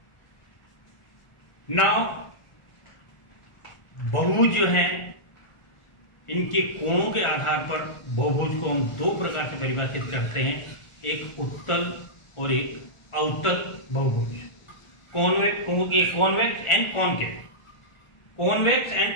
नाउ बहुभुज जो है इनके कोणों के आधार पर बहुभुज को हम 2 प्रकार से परिभाषित करते हैं, एक उत्तल और एक अवतल बहुभुज। Convex and concave. Convex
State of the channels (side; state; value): right; late; 1.4 ms